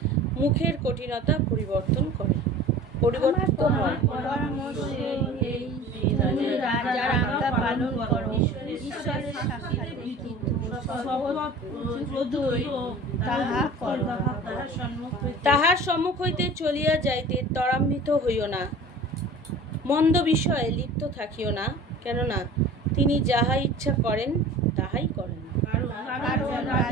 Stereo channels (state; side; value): normal; both; correlation 0.41